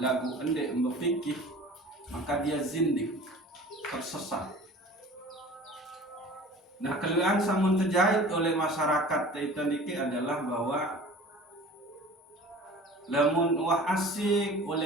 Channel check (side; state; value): both; normal; correlation 0.43